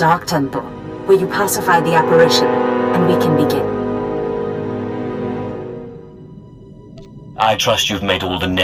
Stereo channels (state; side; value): identical; both; correlation 1.00